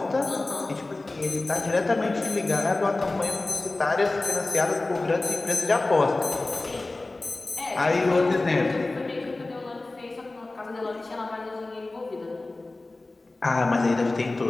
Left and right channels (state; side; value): quieter; right; 3.1 dB